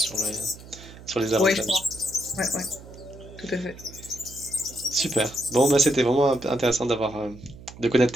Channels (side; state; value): right; noise; hum, 18 dB below the sound